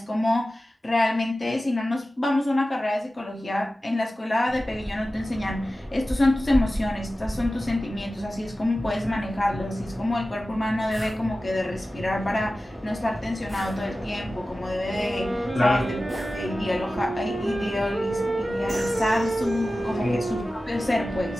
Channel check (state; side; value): normal; both; correlation 0.95